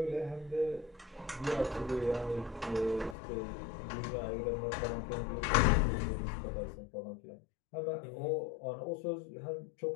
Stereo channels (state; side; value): drops out; right; at 3.2 s